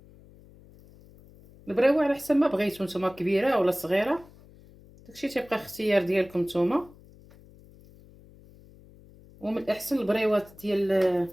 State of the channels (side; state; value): left; noise; hum, 24 dB below the sound